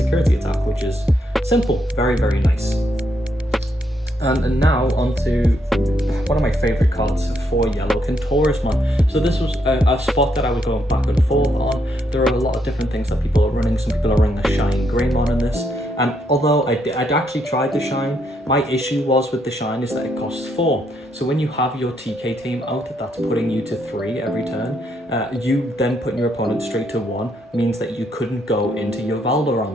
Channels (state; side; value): normal; both; correlation 0.76